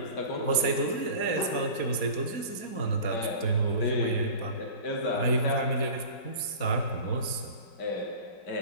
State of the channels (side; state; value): right; late; 4.3 ms